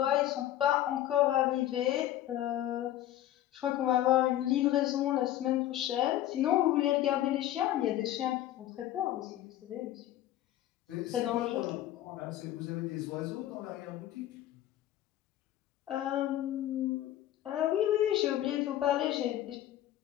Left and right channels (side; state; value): right; quieter; 13.1 dB